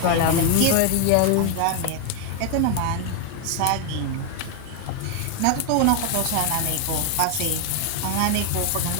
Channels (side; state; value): both; different; correlation 0.01